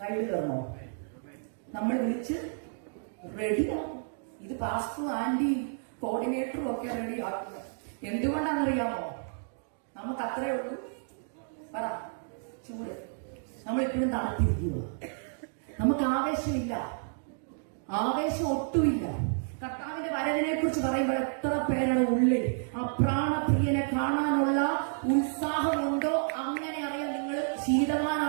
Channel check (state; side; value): silent; left; digital silence